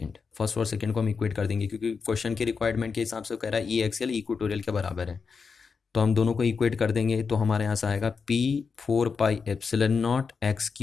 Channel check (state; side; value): quieter; right; 5.3 dB